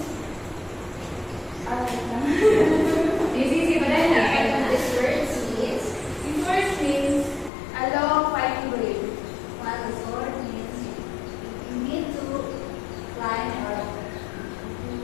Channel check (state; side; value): drops out; right; at 7.5 s